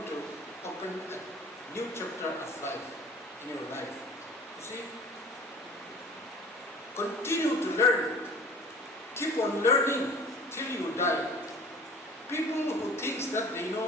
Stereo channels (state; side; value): normal; both; correlation 0.45